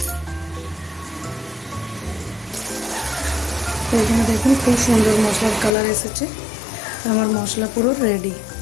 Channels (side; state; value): right; drops out; at 5.7 s